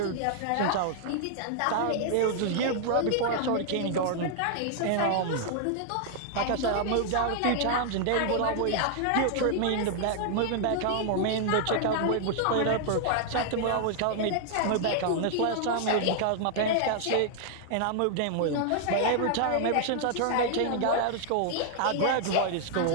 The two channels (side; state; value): both; different; correlation 0.00